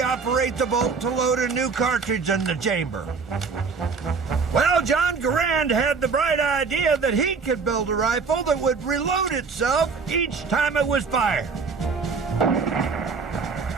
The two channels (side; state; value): left; quieter; 5.0 dB